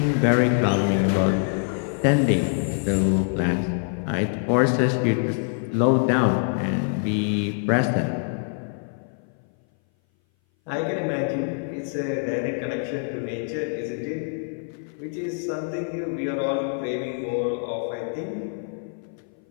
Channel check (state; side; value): silent; right; 58 dB below the other